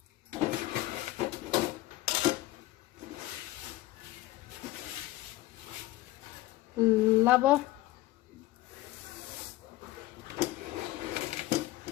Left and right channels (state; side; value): quieter; right; 17.4 dB